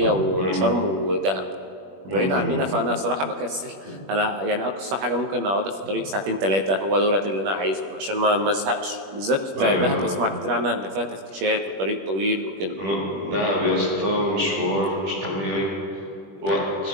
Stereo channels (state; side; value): late; left; 21 ms